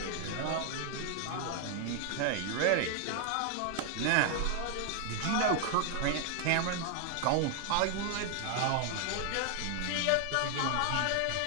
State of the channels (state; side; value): different; both; correlation 0.00